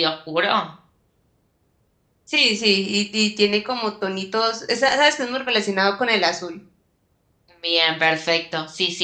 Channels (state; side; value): identical; both; correlation 1.00